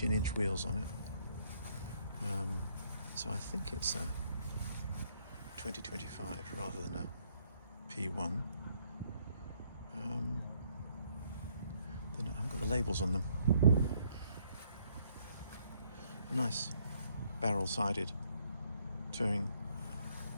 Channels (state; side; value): inverted; both; correlation -0.70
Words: wheels on it. So I think it's a 2025 rather than a P1. I've got the labels on them. Nice barrel-sided touring